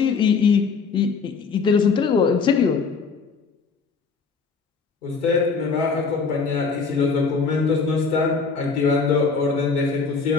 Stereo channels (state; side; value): quieter; right; 5.0 dB